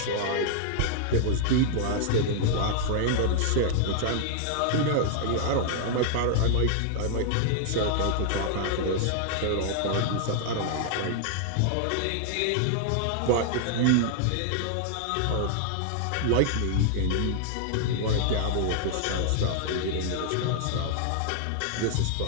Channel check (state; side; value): different; both; correlation -0.01